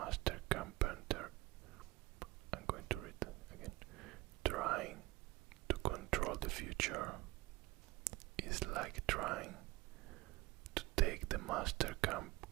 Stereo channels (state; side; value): quieter; left; 20.6 dB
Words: carpenter. I'm going to read again. Trying to control the future is like trying to take the master